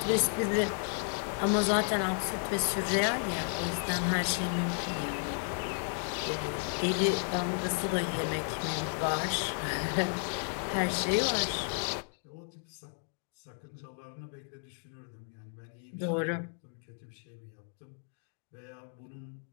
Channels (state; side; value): silent; right; 56 dB below the other